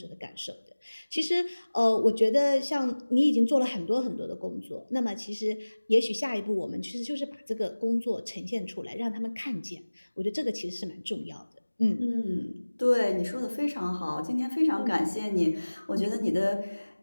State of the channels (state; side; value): inverted; both; correlation -1.00